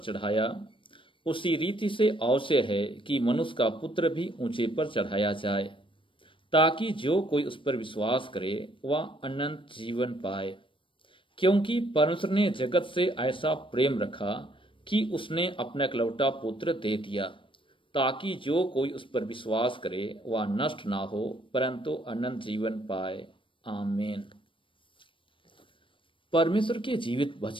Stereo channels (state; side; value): late; right; 0.25 ms